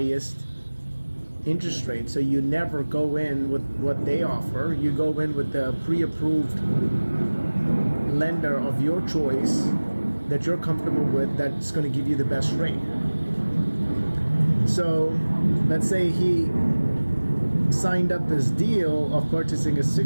interest rate. So you never go in with what they offer. You go in with the pre-approved lender of your choice that you're comfortable with, that's going to give you the best rate. So let's say he signed up this deal of purchasing a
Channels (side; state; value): both; inverted; correlation -1.00